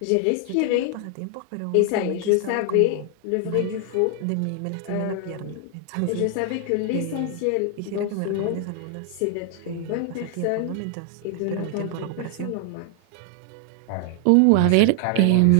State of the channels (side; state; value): both; different; correlation 0.00